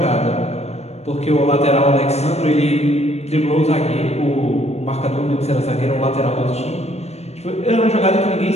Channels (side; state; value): right; late; 0.31 ms